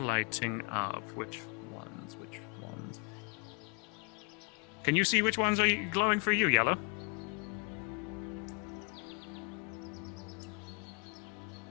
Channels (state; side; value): quieter; right; 34.1 dB